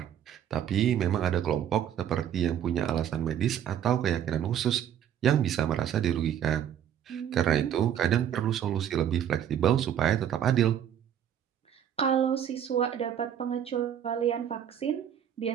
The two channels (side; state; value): left; quieter; 9.6 dB